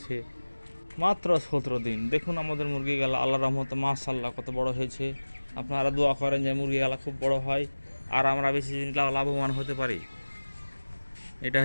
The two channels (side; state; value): both; inverted; correlation -1.00